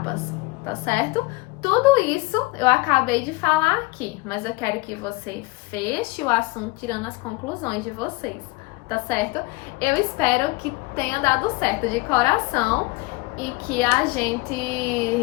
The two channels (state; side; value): quieter; right; 22.6 dB